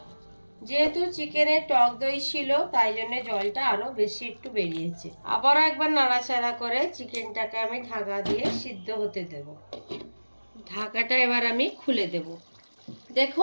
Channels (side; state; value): both; inverted; correlation -1.00